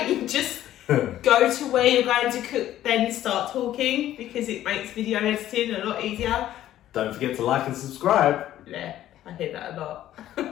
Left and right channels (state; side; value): quieter; right; 12.8 dB